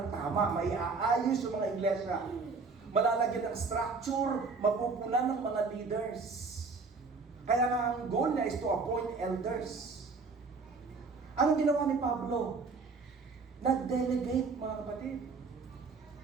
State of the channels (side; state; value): left; quieter; 4.4 dB